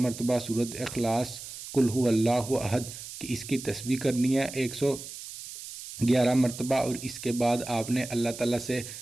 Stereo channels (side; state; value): right; noise; hiss, 12 dB below the sound